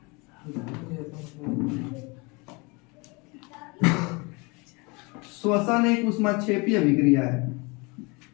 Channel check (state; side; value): quieter; right; 28.2 dB